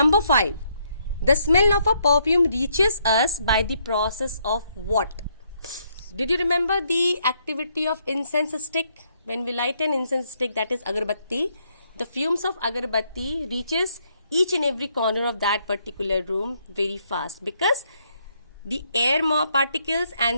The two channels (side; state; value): both; inverted; correlation -0.73